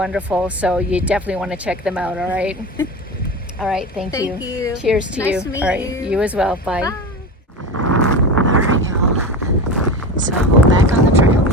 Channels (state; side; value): normal; both; correlation 0.26